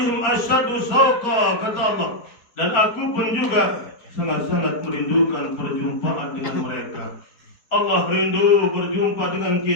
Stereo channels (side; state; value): right; late; 4.3 ms